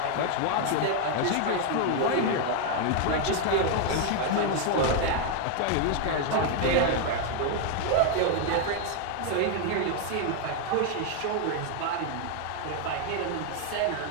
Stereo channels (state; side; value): different; both; correlation 0.00